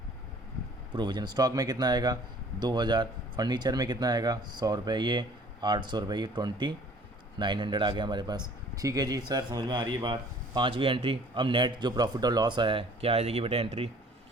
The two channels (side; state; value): both; normal; correlation 0.53